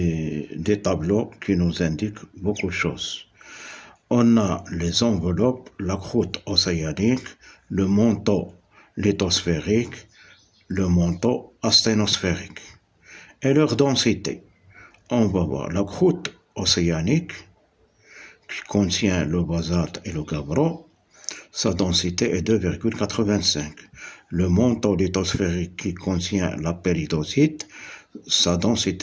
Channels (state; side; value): identical; both; correlation 1.00